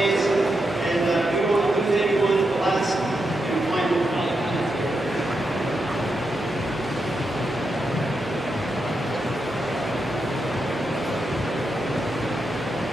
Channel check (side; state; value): both; normal; correlation 0.85